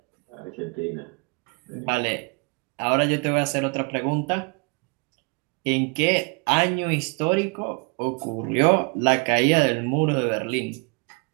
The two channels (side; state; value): left; quieter; 32.8 dB